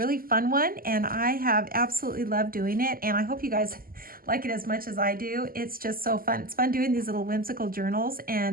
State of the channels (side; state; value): left; late; 0.42 ms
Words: fun one, and I have absolutely loved doing it, and I hope you guys like it as much as I do. It's just so fun. It's fun doing these little whimsical journals